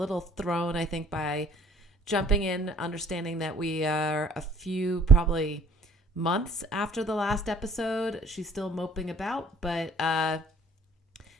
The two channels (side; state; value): both; normal; correlation 0.55